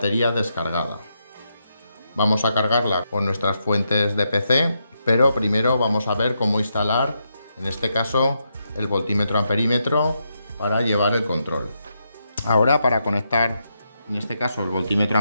descargada. Vamos a cargarla con nuestras fuentes de PC, pero primero vamos a ver cómo instalar, en este caso, el voltímetro amperímetro para llevar el control. Ahora, para conectar, en este caso, el voltímetro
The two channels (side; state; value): both; inverted; correlation -0.82